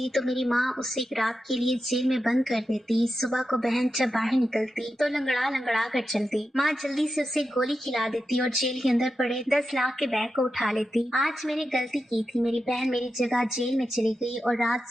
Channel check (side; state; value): both; normal; correlation 0.89